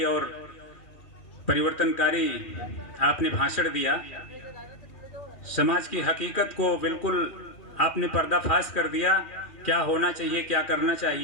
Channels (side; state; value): right; late; 2.4 ms